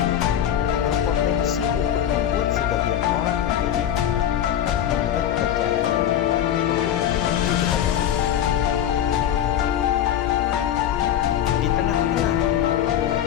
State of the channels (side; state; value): right; quieter; 10.5 dB